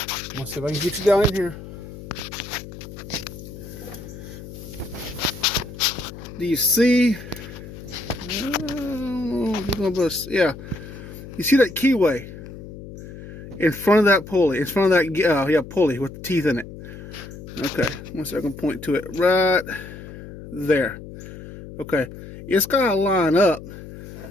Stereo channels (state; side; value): noise; left; hum, 13 dB below the sound